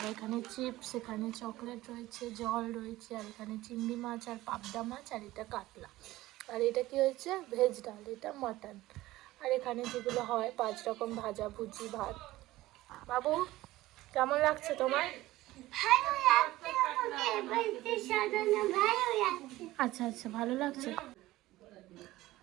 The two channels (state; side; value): quieter; left; 17.1 dB